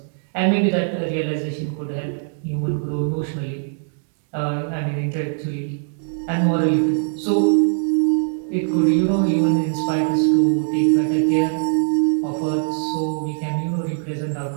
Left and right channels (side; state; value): left; silent; 65 dB below the other